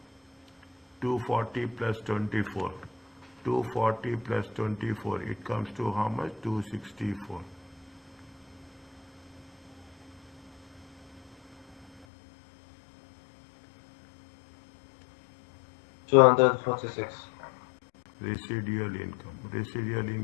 240 plus 24. 240 plus 24. It comes to how much? 264. $246. Residual income. Residual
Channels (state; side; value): drops out; right; at 12.1 s